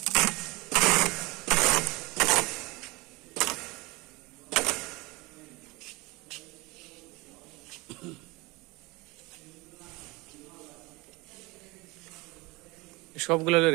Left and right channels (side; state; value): left; quieter; 23.5 dB